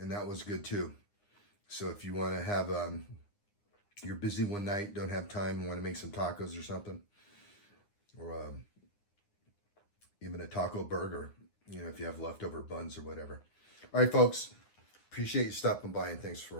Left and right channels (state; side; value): late; right; 9.9 ms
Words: that was good too. So if you want to have, you're busy one night, don't have time, want to make some tacos or something, or even a taco burger, you know, if you have leftover buns or whatever. All right, folks, appreciate you stopping by, and thanks